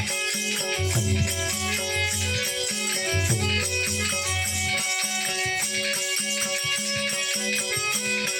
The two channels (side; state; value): both; identical; correlation 1.00